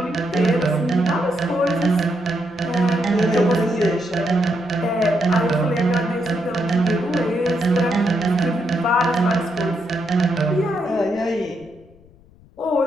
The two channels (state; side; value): noise; left; rumble, 27 dB below the sound